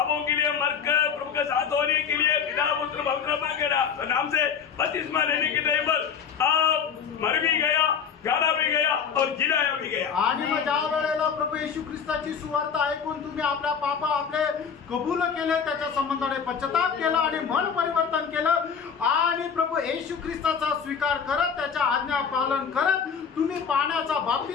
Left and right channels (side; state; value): right; quieter; 6.8 dB